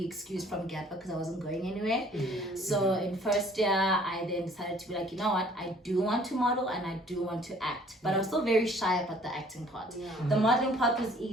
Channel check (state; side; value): normal; both; correlation 0.56